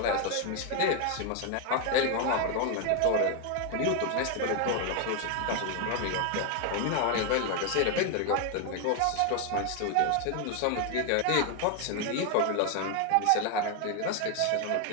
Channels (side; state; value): both; different; correlation 0.01